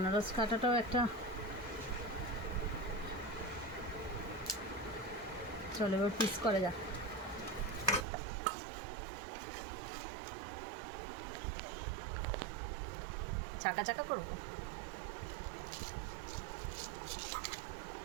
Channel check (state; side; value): drops out; left; at 8.1 s